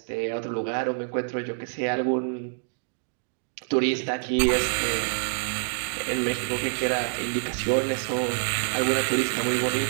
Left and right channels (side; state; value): left; silent; digital silence